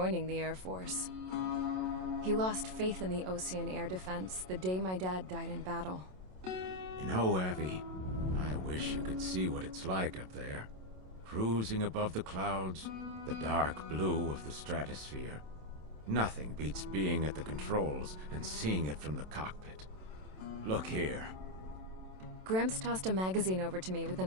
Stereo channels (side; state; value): left; late; 27 ms